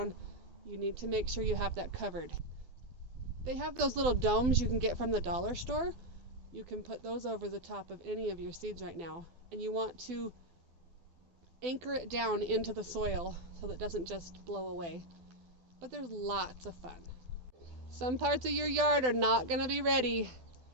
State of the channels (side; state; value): left; late; 12 ms